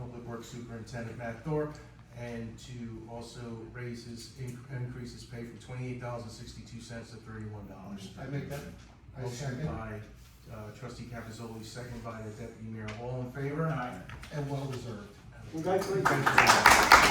Public Works Superintendent Matt Thorpe, and to also increase his pay from $28.62 to $31. I make that, I Motion second, by trustee Capizoli, second by the deputy mayor, all in favor? Aye. and well deserved. We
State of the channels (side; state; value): both; identical; correlation 1.00